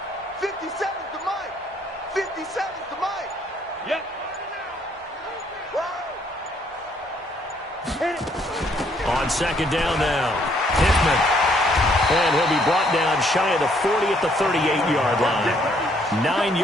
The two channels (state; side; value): normal; both; correlation 0.67